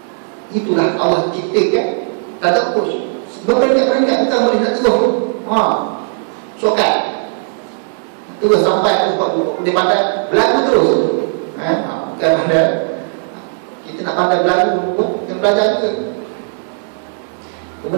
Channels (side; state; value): left; silent; digital silence